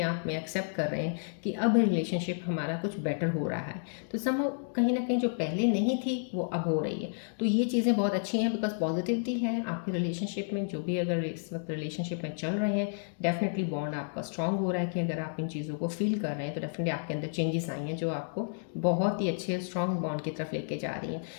आप में एक्सेप्ट कर रहे हैं कि अब रिलेशनशिप हमारा कुछ बेटर हो रहा है। तो सम कहीं ना कहीं जो पहले नहीं थी वो अब हो रही है। तो ये चीज़ें बहुत अच्छी हैं, बिकॉज पॉजिटिविटी है आपकी रिलेशनशिप में। जो भी अगर इस वक्त रिलेशनशिप में चल रहे हैं, डेफिनेटली बॉन्ड आपका स्ट्रांग हो रहा है, कि अगर आप इन चीज़ों को फील कर रहे हैं तो डेफिनेटली आपके अंदर चेंजेस आई हैं जो आपको बहुत ही अच्छे स्ट्रांग बॉन्ड की तरफ लेके जा रही हैं।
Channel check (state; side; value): silent; right; digital silence